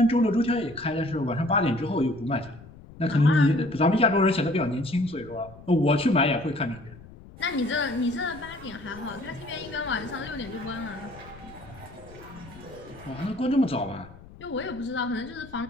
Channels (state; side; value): noise; left; rumble, 19 dB below the sound